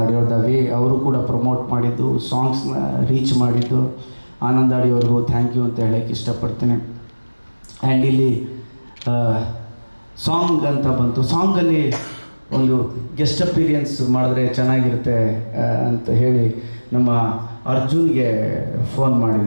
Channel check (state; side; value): inverted; both; correlation -1.00